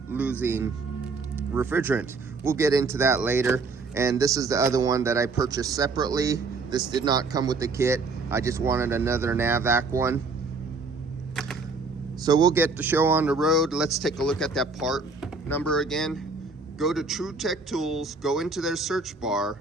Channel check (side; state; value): left; quieter; 4.0 dB